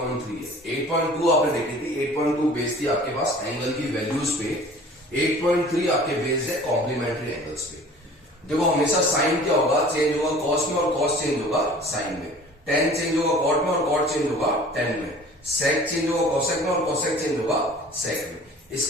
है। 8.2 आपने देखी थी, 8.2 बेस्ड थी आपके पास एंगल की वैल्यूज पे, 8.3 आपके बेस्ड है कॉम्प्लीमेंट्री एंगल्स पे। देखो हमेशा साइन क्या होगा, चेंज होगा कॉस में और कॉस चेंज होगा साइन में। टेन चेंज होगा कॉट में और कॉट चेंज होगा टेन में। सेक चेंज होगा कॉसेक में और कॉसेक चेंज होगा सेक में।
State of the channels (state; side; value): normal; both; correlation 0.46